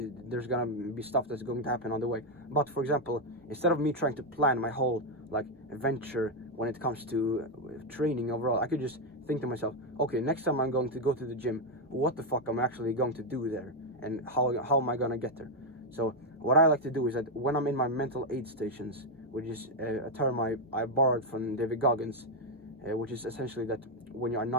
gonna be stuff that's going to happen on the way. But for example, instead of me trying to plan my whole like adventure when it comes to training overall, I could just think to myself, okay, next time I'm going to go to the gym, what the fuck am I actually going to do there, and how am I gonna get there? So what I like to do is that when I'm in my mental aid stations, which is a term I borrowed from David Goggins, which is essentially that when you are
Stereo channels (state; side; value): normal; both; correlation 0.03